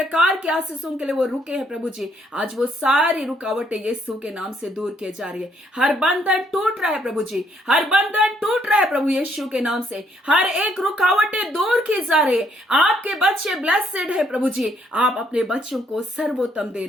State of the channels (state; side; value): normal; both; correlation 0.70